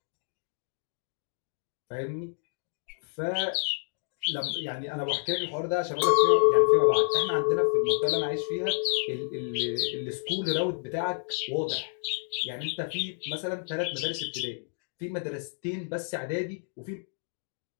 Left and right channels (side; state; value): right; silent; digital silence